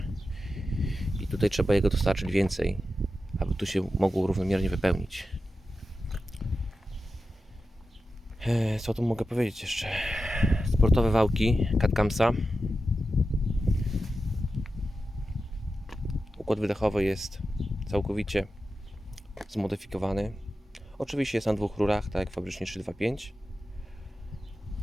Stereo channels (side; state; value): both; normal; correlation 0.91